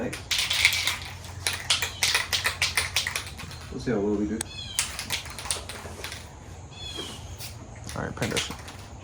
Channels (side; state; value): both; identical; correlation 1.00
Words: Let's see how well we do. All right, paint that shit.